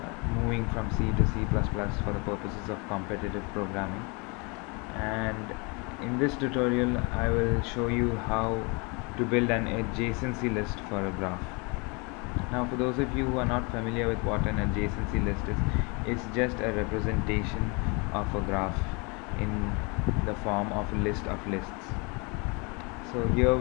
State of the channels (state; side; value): quieter; right; 30.7 dB